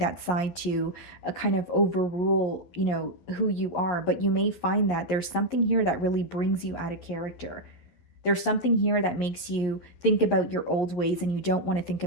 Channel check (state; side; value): late; right; 11 ms